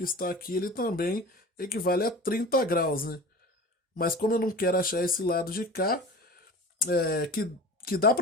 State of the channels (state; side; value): normal; both; correlation 0.36